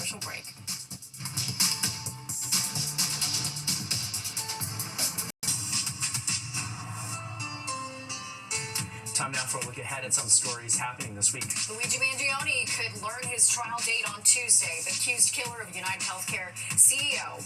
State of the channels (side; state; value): both; identical; correlation 1.00